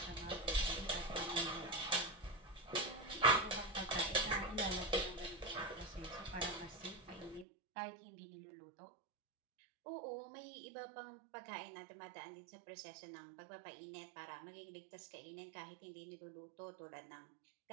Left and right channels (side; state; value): left; drops out; at 7.5 s